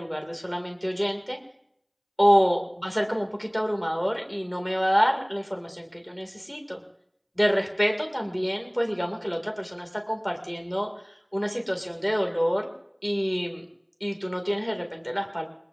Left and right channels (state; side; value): identical; both; correlation 1.00